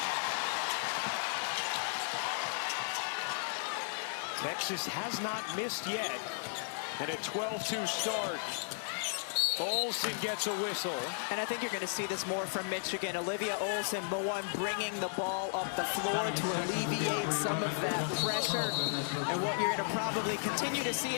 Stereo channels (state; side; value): silent; right; 55 dB below the other